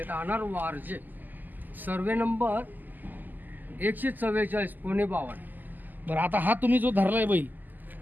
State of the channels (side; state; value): left; late; 0.086 ms